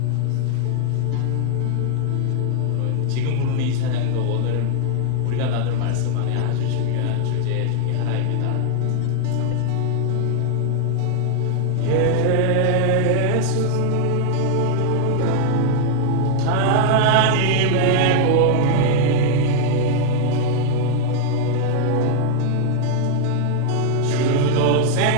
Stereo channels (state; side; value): different; both; correlation 0.00